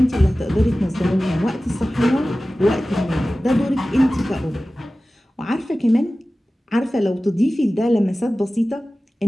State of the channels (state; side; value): normal; both; correlation 0.96